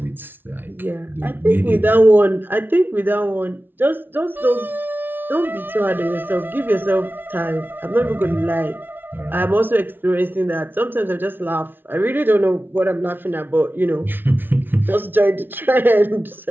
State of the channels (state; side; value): late; left; 0.097 ms